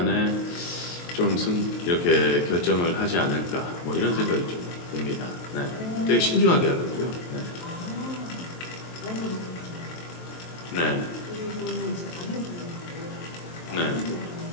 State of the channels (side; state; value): right; late; 23 ms